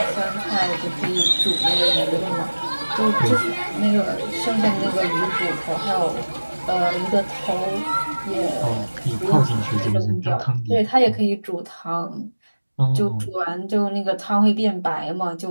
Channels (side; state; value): both; inverted; correlation -1.00